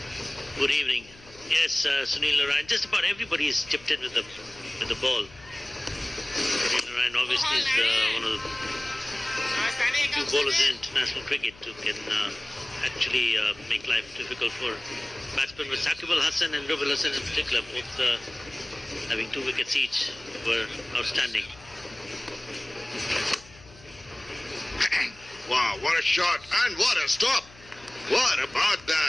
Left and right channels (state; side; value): noise; left; hum, 23 dB below the sound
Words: Good evening. Yes, Sunil Narayan. Just about everybody is chipped in with the ball. Sunil Narayan obviously is one of the few bowlers in international cricket who can actually make life difficult for batsmen. With Shakib Al Hasan and Rub Al Hasan in particular, both having 2 wickets each, were outstanding. Wow, what a shot and what a stop. What about